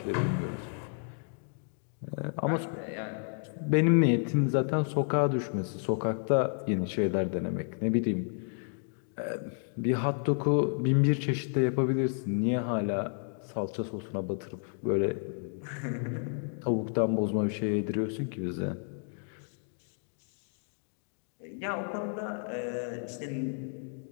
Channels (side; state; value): right; silent; 57 dB below the other